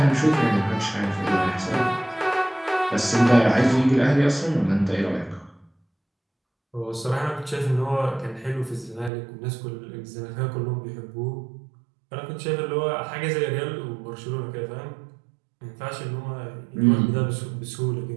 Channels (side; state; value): left; drops out; at 9.1 s